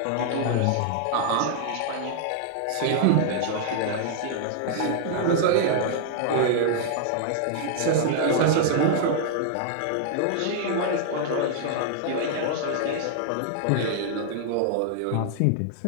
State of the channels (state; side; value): different; both; correlation -0.01